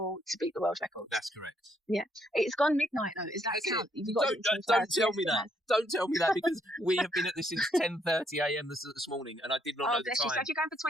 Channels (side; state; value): both; normal; correlation 0.72